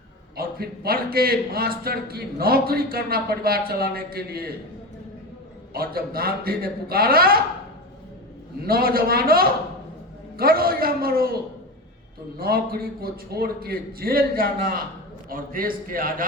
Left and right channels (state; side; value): normal; both; correlation 0.24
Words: और फिर पढ़ के मास्टर की नौकरी करना परिवार चलाने के लिए। और जब गांधी ने पुकारा, नौजवानों करो या मरो, तो नौकरी को छोड़ के जेल जाना और देश के